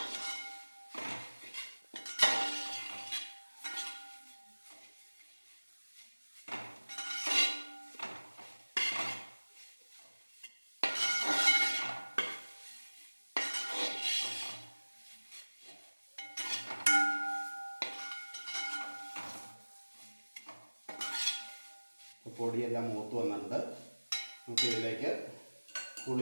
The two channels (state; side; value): inverted; both; correlation -1.00